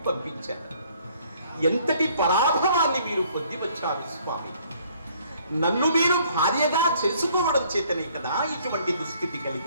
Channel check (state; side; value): inverted; both; correlation -0.61